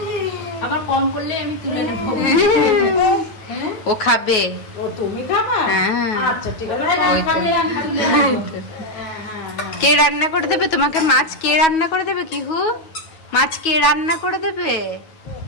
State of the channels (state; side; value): late; right; 9.3 ms